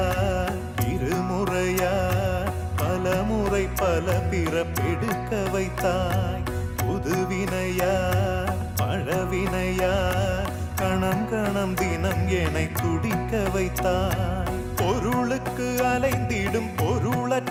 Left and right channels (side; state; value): both; identical; correlation 1.00